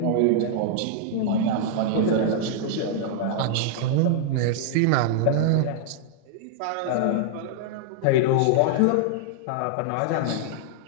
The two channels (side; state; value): both; different; correlation -0.01